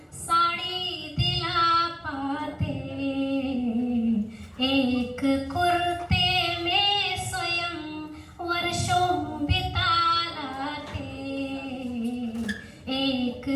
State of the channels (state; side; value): identical; both; correlation 1.00